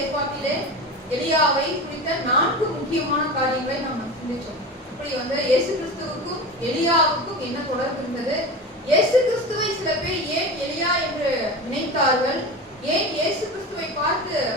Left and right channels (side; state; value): both; normal; correlation 0.28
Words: எலியாவை குறித்த 4 முக்கியமான காரியங்களை நாம் சிந்திச்சோம். இப்படி இயேசு கிறிஸ்துவுக்கும் எலியாவுக்கும் என்ன தொடர்பு இருந்தது? இயேசு கிறிஸ்துவை சில பேர் ஏன் எலியா என்று நினைத்தார்கள்? ஏன் இயேசு கிறிஸ்துவை பார்த்து